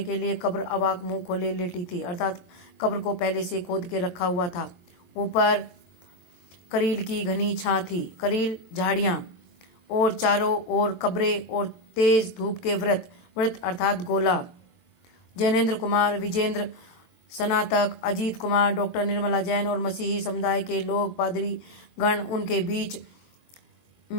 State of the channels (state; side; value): late; right; 22 ms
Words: के लिए कब्र अवाक मुंह खोले लेटी थी, अर्थात कब्र को पहले से खोद के रखा हुआ था। ऊपर करील की घनी छां थी, करील झाड़ियां, और चारों ओर कब्रें और तेज धूप के व्रत अर्थात गोला। जैनेन्द्र कुमार, विजेंद्र स्नातक, अजीत कुमार, डॉक्टर निर्मला जैन और मसीही समुदाय के लोग, पादरी गण, उनके बीच